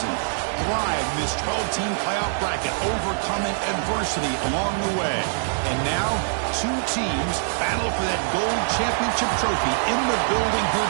thrive in this 12-team playoff bracket, overcoming adversity along the way. And now, two teams battle for that gold championship trophy in the building here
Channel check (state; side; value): silent; left; digital silence